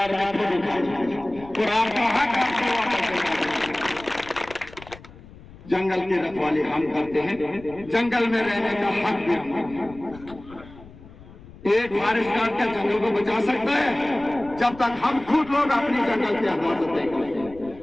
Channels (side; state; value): left; noise; rumble, 19 dB below the sound